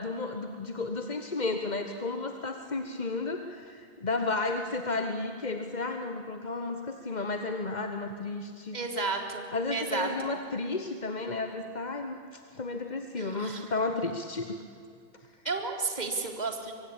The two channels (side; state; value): right; late; 2.1 ms